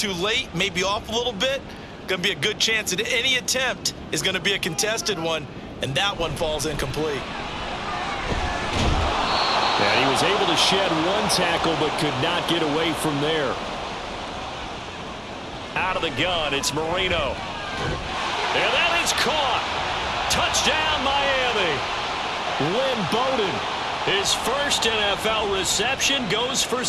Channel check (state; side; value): identical; both; correlation 1.00